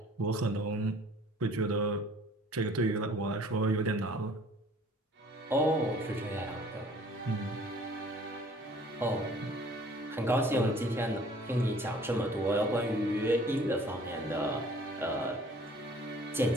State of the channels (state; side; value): normal; both; correlation 0.52